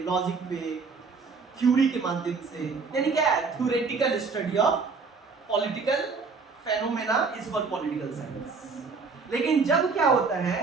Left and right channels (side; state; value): left; quieter; 4.7 dB